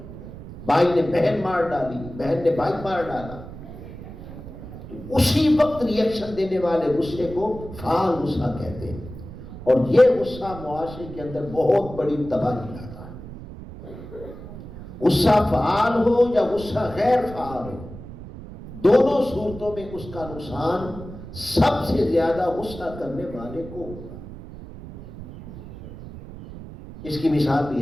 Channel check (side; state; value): right; noise; rumble, 13 dB below the sound